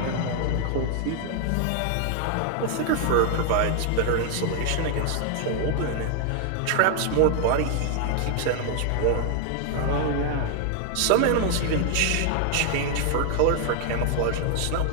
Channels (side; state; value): both; different; correlation 0.00